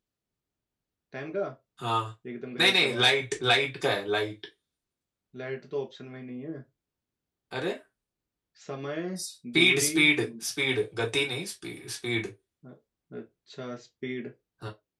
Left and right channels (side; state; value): both; identical; correlation 1.00